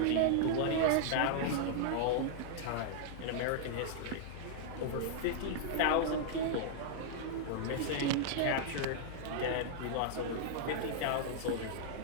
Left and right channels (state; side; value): different; both; correlation -0.01